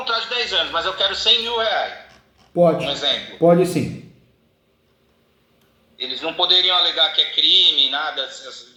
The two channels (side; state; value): both; identical; correlation 1.00